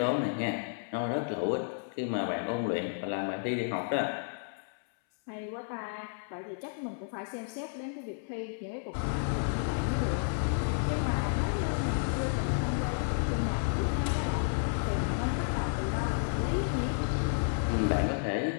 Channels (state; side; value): silent; right; 57 dB below the other